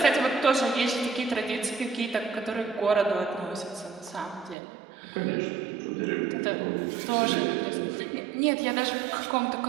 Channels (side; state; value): left; drops out; at 4.5 s